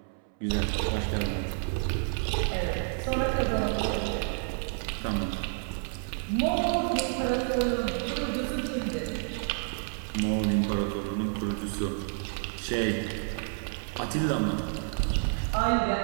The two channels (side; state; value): left; silent; 58 dB below the other